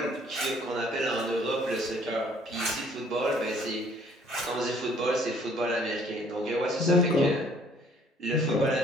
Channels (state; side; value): normal; both; correlation 0.60